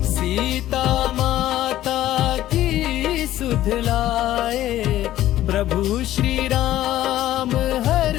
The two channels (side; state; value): right; quieter; 13.8 dB